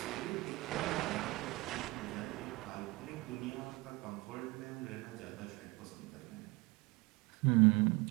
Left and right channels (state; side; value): quieter; left; 23.3 dB